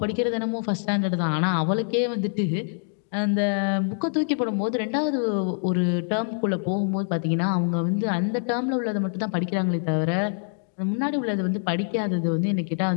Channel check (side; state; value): right; silent; digital silence